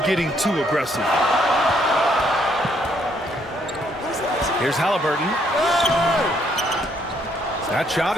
too aggressive. Here's Halliburton. That shot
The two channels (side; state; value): both; normal; correlation 0.70